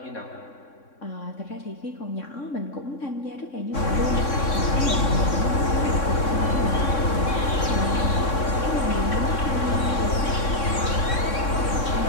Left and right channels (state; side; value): late; right; 3.6 ms